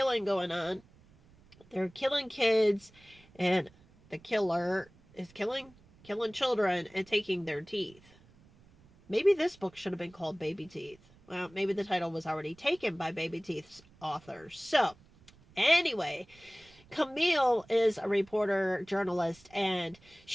going on. They're killing kids, and the killer is killing children and taking their teeth. Maybe this book should have been called Baby Teeth. Well, maybe the title was already taken by Baby Teeth's author. So, anyway, Camille is a reporter, journalist, and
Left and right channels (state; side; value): noise; right; rumble, 27 dB below the sound